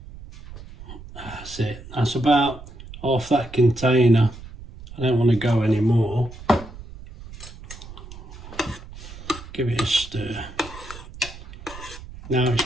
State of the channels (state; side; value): noise; right; rumble, 15 dB below the sound